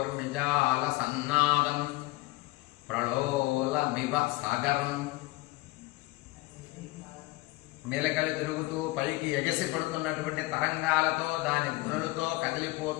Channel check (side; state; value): right; quieter; 20.8 dB